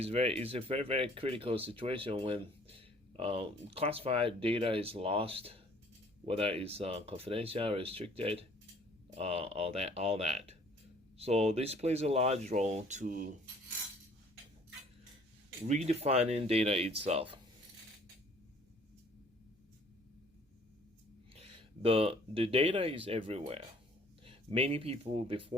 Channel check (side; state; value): both; normal; correlation 0.56